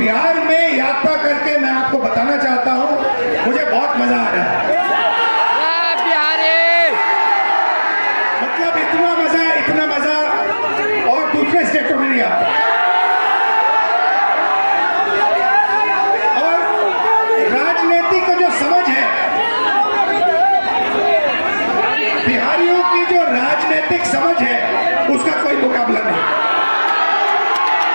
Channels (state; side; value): inverted; both; correlation -1.00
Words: में यात्रा करके मैं आपको बताना चाहता हूं, मुझे बहुत मजा आ रहा है। मतलब इतना मजा और दूसरे स्टेटों में नहीं आता। और राजनीति का जो समझ है, बिहारियों की जो राजनीतिक समझ है, उसका कोई मुकाबला नहीं